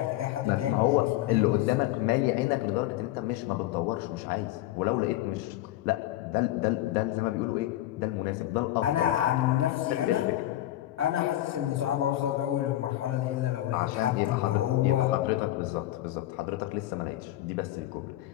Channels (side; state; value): right; quieter; 14.8 dB